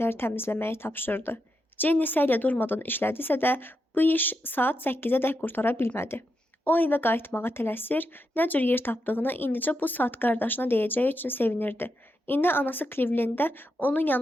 təmizləməyi tapşırdı. Jenny səylə durmadan işlədisə də bu iş saat 8-ədək qurtara bilmədi. O evə qayıtmağa tələsir, nə cür yer tapdığını indicə bu saat qardaşına deyəcəyi üçün sevinirdi. İndi anası Clevelanddə onun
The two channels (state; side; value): normal; both; correlation 0.84